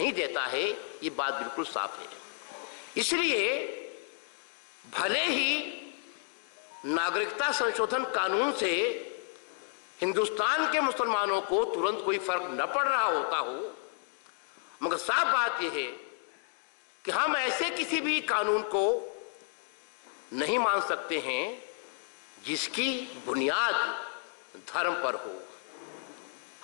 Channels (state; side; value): silent; right; 57 dB below the other